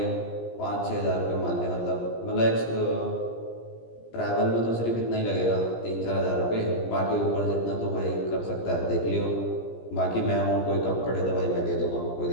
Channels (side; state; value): right; late; 17 ms